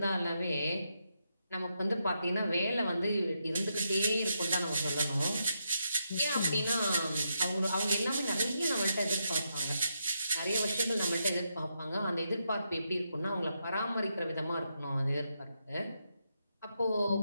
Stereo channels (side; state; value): both; inverted; correlation -0.82